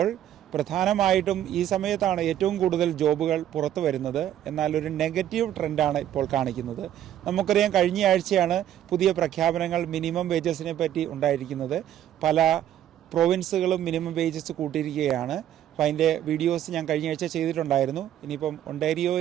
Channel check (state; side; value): quieter; left; 11.3 dB